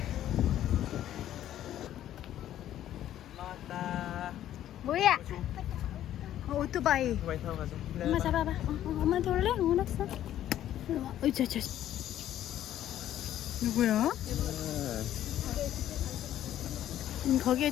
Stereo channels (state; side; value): quieter; right; 12.0 dB